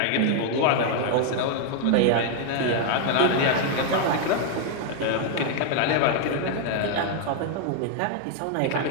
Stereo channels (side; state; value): both; different; correlation 0.00